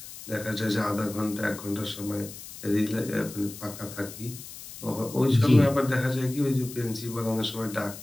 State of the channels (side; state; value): left; noise; hiss, 14 dB below the sound